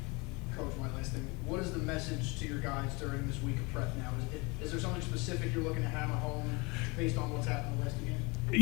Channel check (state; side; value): quieter; right; 27.6 dB